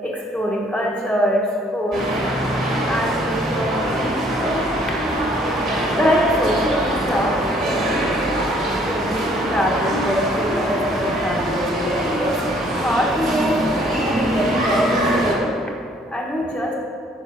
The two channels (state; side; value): normal; both; correlation 0.62